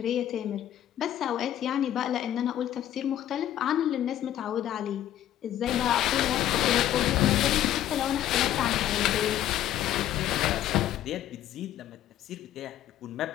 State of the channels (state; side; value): quieter; right; 12.0 dB